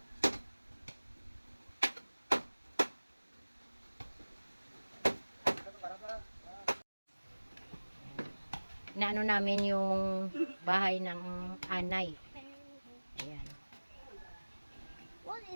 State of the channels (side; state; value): both; inverted; correlation -1.00